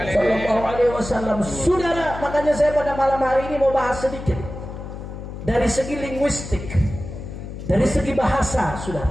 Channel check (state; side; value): noise; left; hum, 10 dB below the sound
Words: sallallahu alaihi wasallam. Saudara, makanya saya pada malam hari ini mau bahas sedikit dari segi linguistik, dari segi bahasa,